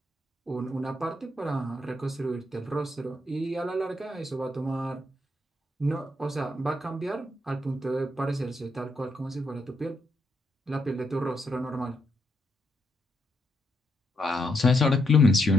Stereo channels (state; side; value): normal; both; correlation 0.78